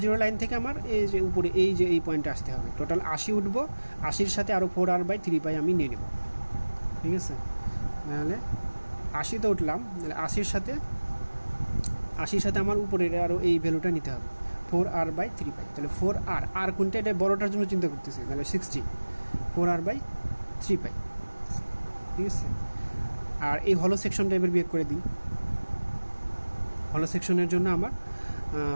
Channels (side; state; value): both; inverted; correlation -1.00